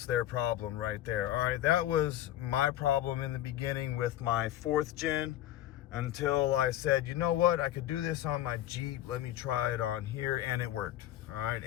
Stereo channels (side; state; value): right; quieter; 13.1 dB